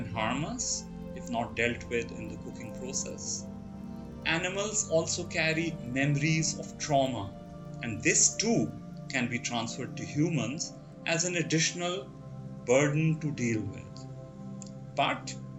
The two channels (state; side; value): identical; both; correlation 1.00